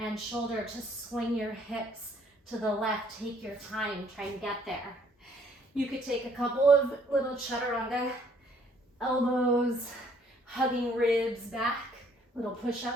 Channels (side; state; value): both; normal; correlation 0.63